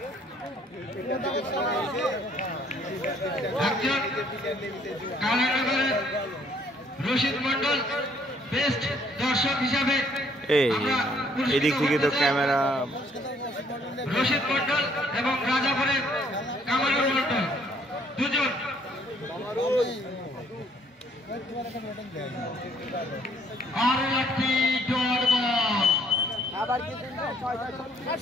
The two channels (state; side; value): normal; both; correlation 0.63